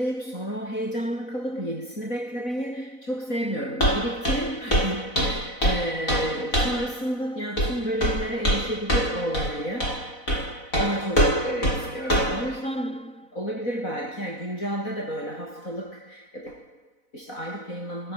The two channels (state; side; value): late; right; 4.0 ms